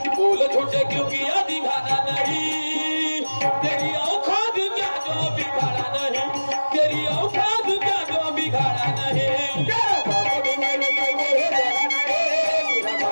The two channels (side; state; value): both; inverted; correlation -1.00